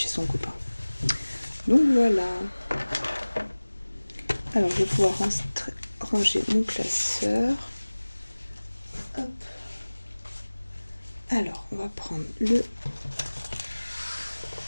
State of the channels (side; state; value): both; inverted; correlation -1.00